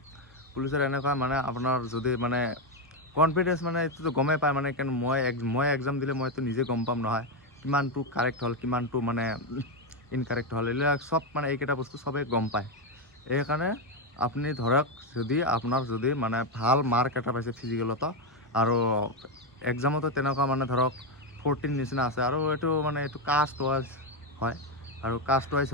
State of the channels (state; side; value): normal; both; correlation 0.07